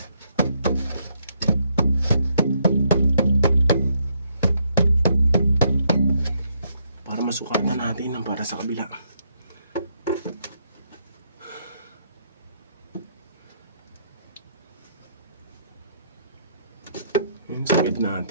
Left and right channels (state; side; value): inverted; both; correlation -0.74